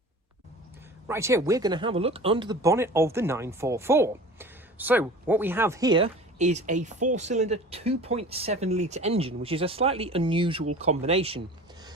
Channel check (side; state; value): both; normal; correlation 0.39